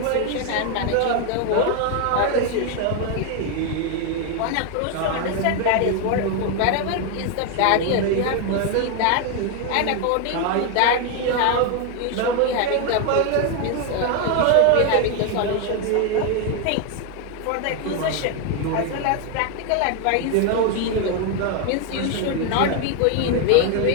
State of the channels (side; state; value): both; different; correlation 0.01